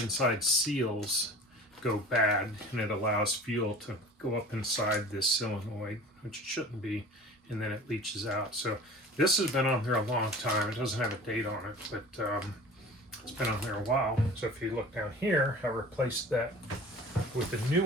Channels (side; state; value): both; normal; correlation 0.41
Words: inside seals go bad, and it allows fuel to go up inside this solenoid, which it shouldn't be, and then it leaches out. So this has been on there a long time. It doesn't have a date on it, but it's been on there a while. So if you look down here, I replaced that with a new